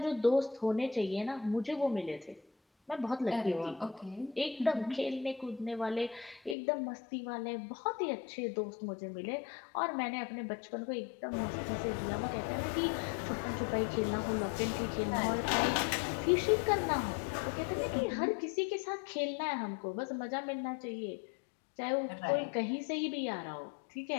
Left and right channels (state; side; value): drops out; right; at 6.6 s